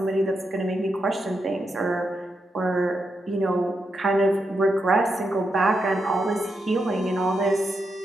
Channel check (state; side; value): normal; both; correlation 0.84